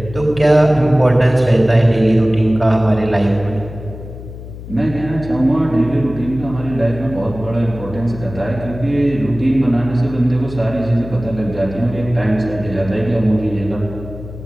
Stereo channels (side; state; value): left; noise; hum, 13 dB below the sound